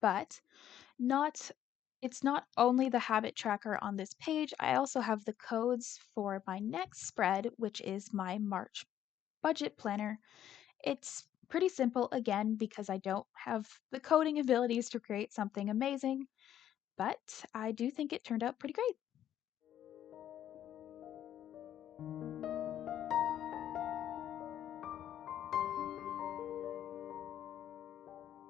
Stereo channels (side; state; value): right; quieter; 11.0 dB